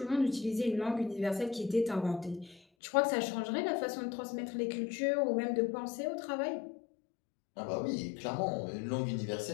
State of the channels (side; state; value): right; drops out; at 2.6 s